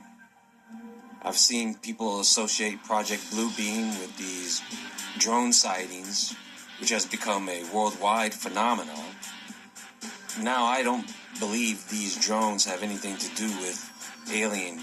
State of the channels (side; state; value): both; identical; correlation 1.00